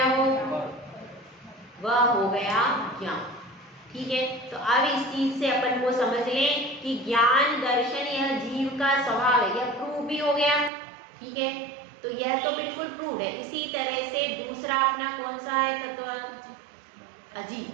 वह हो गया ज्ञान। ठीक है, तो अब इस चीज से अपन को समझ लें कि ज्ञान दर्शन यह जीव का स्वभाव है, यह प्रूव भी हो गया। ठीक है, तो यह तो बिल्कुल प्रूव है। इसी तरह से दूसरा अपना कौन सा है तत्व? अजीव।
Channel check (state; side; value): drops out; left; at 10.7 s